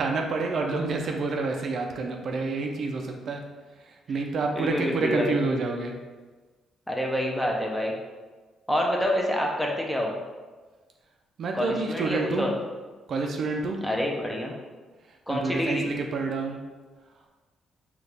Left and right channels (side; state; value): both; normal; correlation 0.77